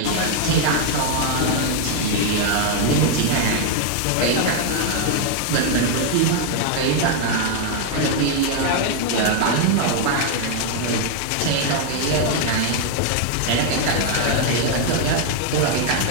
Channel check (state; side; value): different; both; correlation 0.01